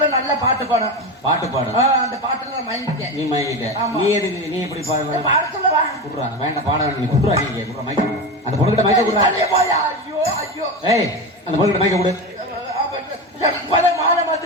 நல்ல பாட்டு பாடும். அந்த பாட்டுல நான் மயங்கிட்டேன். நீ மயங்கிட்ட. நீ எதுக்கு? நீ எப்படி பாடுற? பாட சொல்லவா? குடுறா, வேண்டாம் பாட வேண்டாம். நீ குடுறா, நீங்க குடுறா மைக்க. அந்த பொண்ணுகிட்ட மைக்க குடுறா. ஐயோ. ஏய், அந்த பொண்ணுகிட்ட மைக்க குடு. மாலை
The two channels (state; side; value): normal; both; correlation 0.21